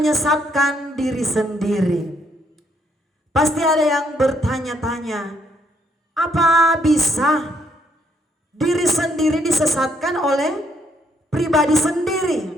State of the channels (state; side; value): normal; both; correlation 0.71